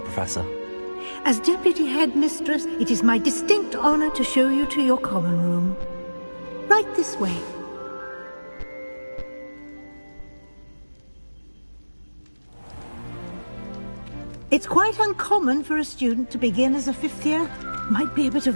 Professor. As Deputy Headmistress, it is my distinct honor to show you to your common room. Right this way. It's quite uncommon for a student to begin as a fifth year. Might be a bit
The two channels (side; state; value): both; inverted; correlation -1.00